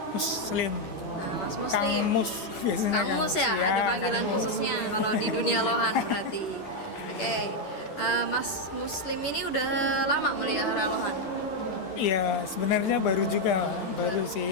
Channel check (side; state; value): right; late; 11 ms